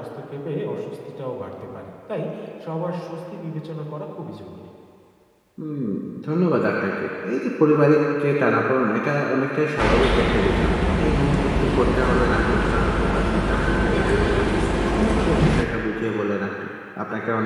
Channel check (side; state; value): both; identical; correlation 1.00